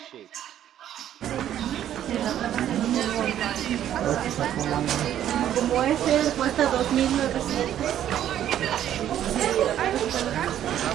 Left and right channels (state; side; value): quieter; left; 11.1 dB